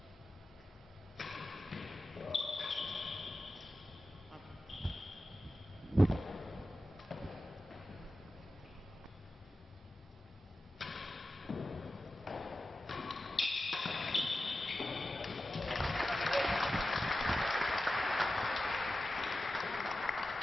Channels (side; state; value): both; normal; correlation 0.93